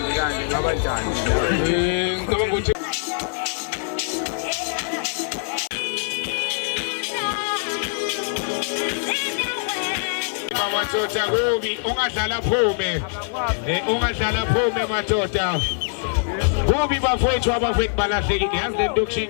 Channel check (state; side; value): silent; right; digital silence